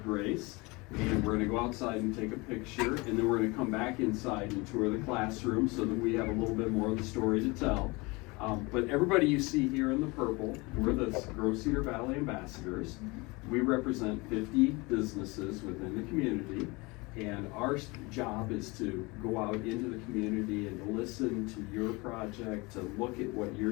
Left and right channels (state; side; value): quieter; right; 25.4 dB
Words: Grace. And we're going to go outside and take a picture, and then we're going to come back inside and tour the classroom so that we have a little bit more of the story to tell. But everybody you see here in the purple, we're the Grow Cedar Valley Ambassadors. We represent 50 businesses within the community, and our job is to go out into the community and to listen to your project, to look at what